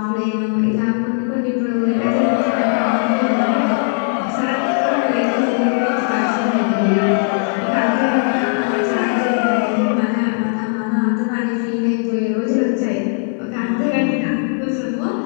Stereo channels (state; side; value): silent; right; 64 dB below the other